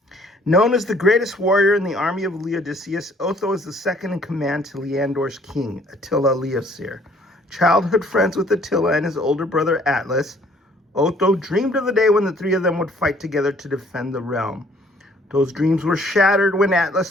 Known as the greatest warrior in the army of Legacies, Otho is the second in command to Leandor's king, Attila Leoseer. Childhood friends with Attila and his older brother Atlas, Otho dreamed of the day when the three of them would fight together to defend the realm. Those dreams were shattered when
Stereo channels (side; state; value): both; normal; correlation 0.60